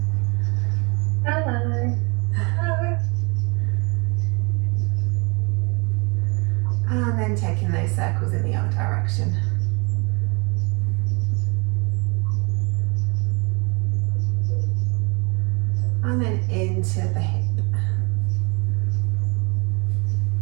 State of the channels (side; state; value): left; quieter; 30.3 dB